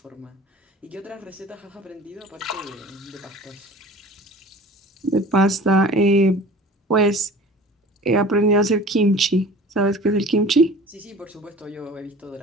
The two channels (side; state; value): both; normal; correlation 0.43